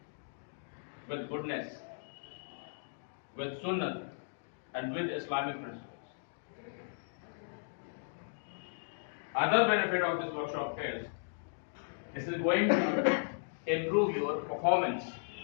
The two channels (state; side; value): silent; right; digital silence